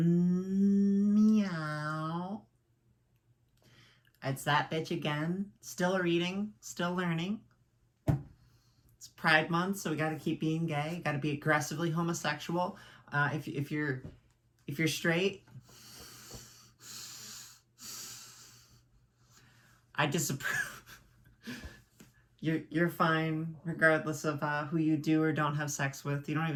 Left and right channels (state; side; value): identical; both; correlation 1.00